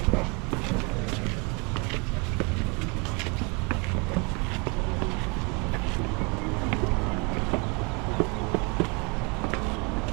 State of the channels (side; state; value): left; quieter; 31.1 dB